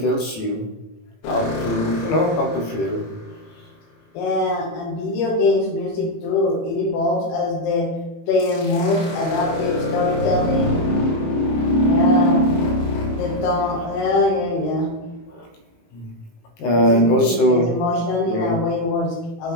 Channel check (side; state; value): right; late; 18 ms